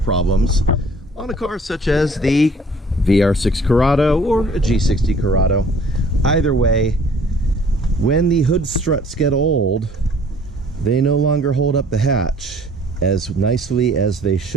on a car such as the VR6 Corrado or a G60 Corrado. Either way, when the hood struts get old, they no longer hold up the hatch as nicely as they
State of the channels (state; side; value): normal; both; correlation 0.55